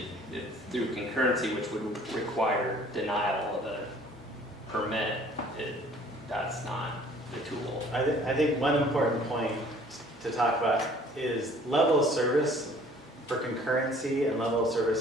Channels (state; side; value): normal; both; correlation 0.54